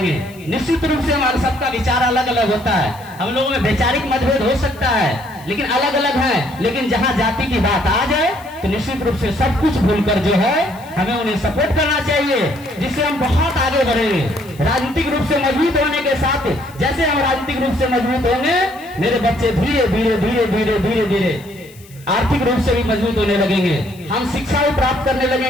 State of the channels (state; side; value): noise; left; hiss, 24 dB below the sound